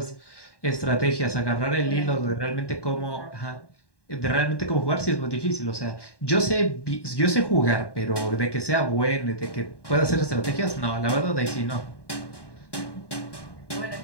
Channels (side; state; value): right; late; 1.1 ms